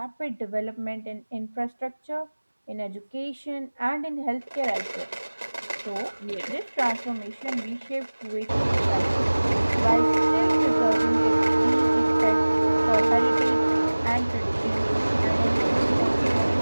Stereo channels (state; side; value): inverted; both; correlation -1.00